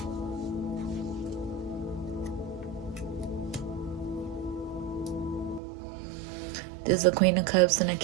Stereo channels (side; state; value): left; drops out; at 5.6 s